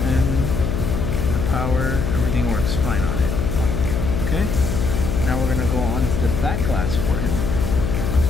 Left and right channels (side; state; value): left; noise; hum, 1 dB below the sound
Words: the power, everything works fine on it. Okay, now we're gonna go on to the back glass for him.